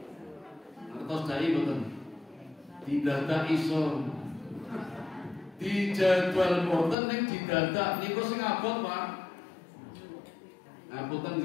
Ngertos dai boten? Didadak iso. Di jadwal boten ning didadak niku sing abot, Pak. Ngapunten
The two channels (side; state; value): right; drops out; at 7.0 s